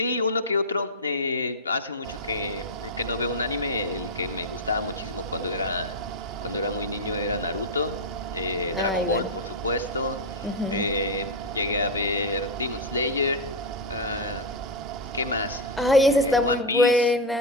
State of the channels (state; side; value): normal; both; correlation 0.02